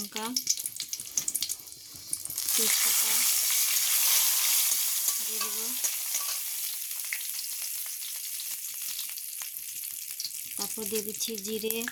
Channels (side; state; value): both; identical; correlation 1.00